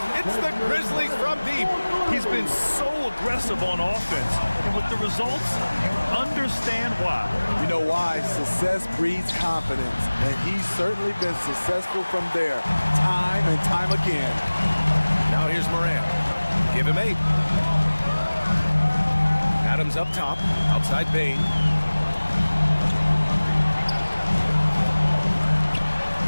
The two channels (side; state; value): both; inverted; correlation -1.00